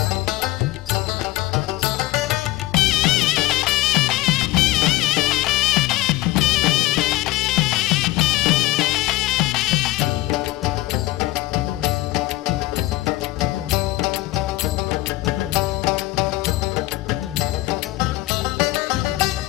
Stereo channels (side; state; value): right; quieter; 17.9 dB